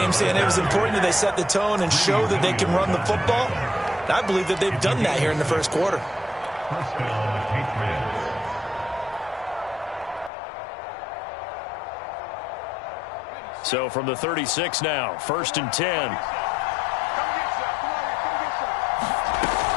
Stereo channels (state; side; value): drops out; right; at 10.3 s